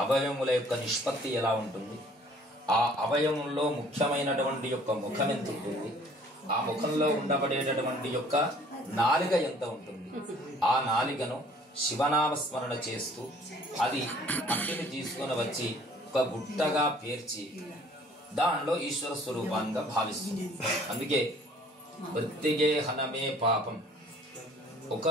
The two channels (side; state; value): both; normal; correlation 0.55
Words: అవయముల యొక్క నిష్పత్తి ఎలా ఉంటుంది, ఆ అవయవంలో ముఖ్యమైనటువంటి యొక్క ముఖం ఎంత ఉంటుంది, ఆ ముఖంలో ఉండబడేటటువంటి యొక్క నాలిక ఎంత ఉంటుంది, ఆ నాలికను శివనామస్మరణ చేస్తూ అది మట్టిని తీసుకొని వచ్చి ఒక గుట్టగా పేర్చి దానిలో ఈశ్వర స్వరూపాన్ని భావిస్తుంది. అందుకే మృత్తిగే హనమే పాపం.